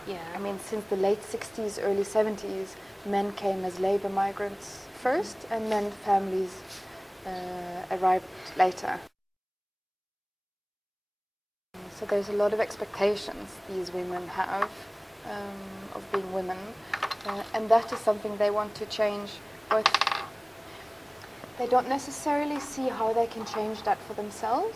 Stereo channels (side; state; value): both; identical; correlation 1.00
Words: Yeah. I mean, since the late 60s, early 70s, men came as labor migrants first, and then families arrived later. So there's a lot of expectations these women have of being women, and that is something they want to change. But they don't necessarily see how they can change that for